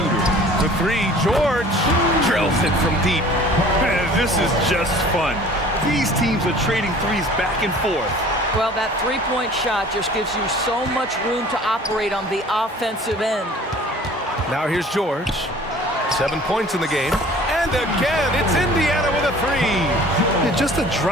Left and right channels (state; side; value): normal; both; correlation 0.48